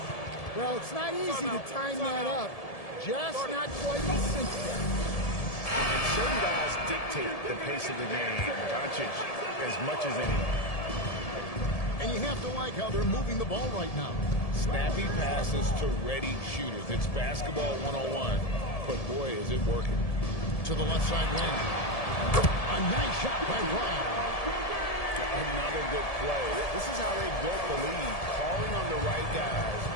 Well, it's not easy to time that up. Just not quite as simple. And certain guys dictate the pace of the game. Doncic as much as anyone. And you have to like how they're moving the ball right now. Snappy passes to ready shooters. It's basketball 101, but boy, is it working. To the left side wing. A nice shot by Brown. Another good play. This is how they built the lead, calling on the right guys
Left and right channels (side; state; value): right; late; 1.7 ms